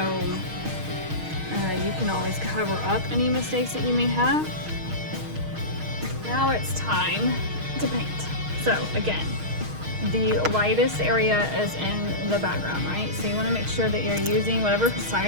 you can always cover up any mistakes that you may have. Now it's time to paint. So again, the lightest area is in the background, right? So you want to make sure that you're using whatever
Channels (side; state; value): left; late; 6.4 ms